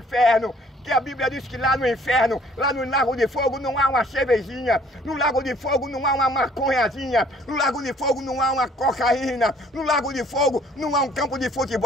Que a Bíblia diz que lá no inferno, lá no lago de fogo não há uma cervejinha, no lago de fogo não há uma maconhazinha, no lago de fogo não há uma cocaína, no lago de fogo não há um campo de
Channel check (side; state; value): both; normal; correlation 0.58